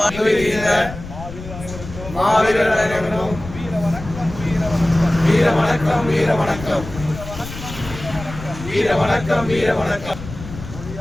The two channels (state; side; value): noise; left; rumble, 12 dB below the sound